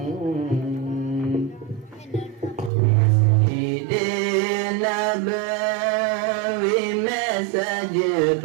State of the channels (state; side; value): drops out; left; at 2.7 s